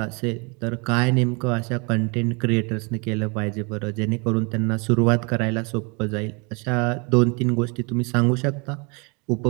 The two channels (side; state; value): left; quieter; 31.8 dB